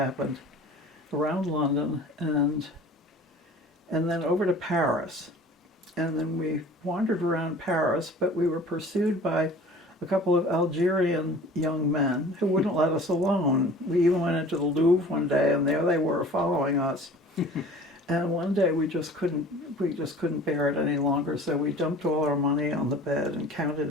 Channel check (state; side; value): normal; both; correlation 0.45